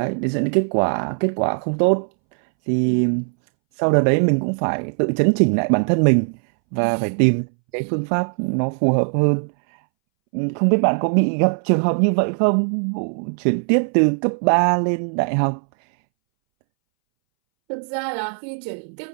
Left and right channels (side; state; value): left; silent; 64 dB below the other